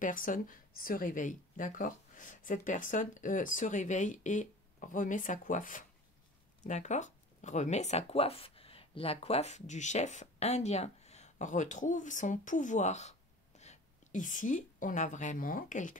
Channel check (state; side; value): normal; both; correlation 0.41